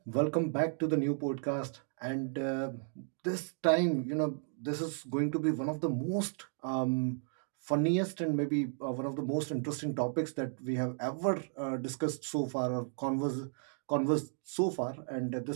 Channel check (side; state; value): left; silent; 55 dB below the other